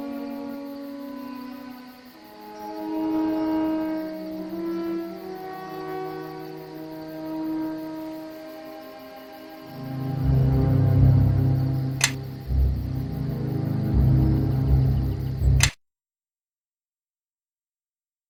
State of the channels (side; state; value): both; identical; correlation 1.00